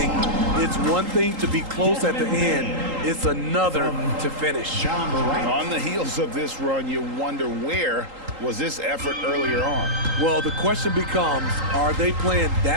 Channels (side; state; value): left; late; 3.8 ms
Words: It's one thing to be close at the end. It's another to finish. On the heels of this run, you wonder where was this effort earlier on? Well, the question becomes, are they playing